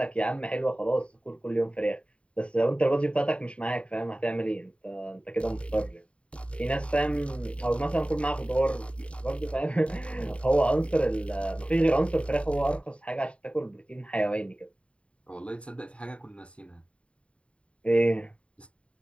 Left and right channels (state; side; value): late; right; 0.061 ms